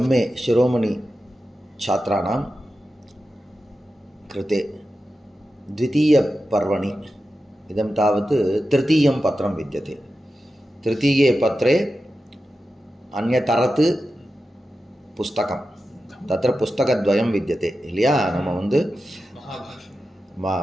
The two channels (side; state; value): both; normal; correlation 0.92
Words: சிரோமணி छात्राणां कृते द्वितीयपर्वणि इदं तावत् तृतीयं पत्रं विद्यते. तृतीये पत्रे अन्यतरत् पुस्तकं तत्र पुस्तकद्वयं विद्यते இல்லையா. நம்ம வந்து